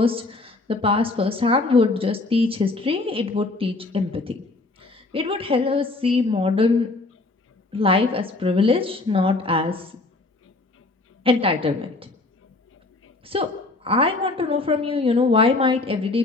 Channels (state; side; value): quieter; right; 3.2 dB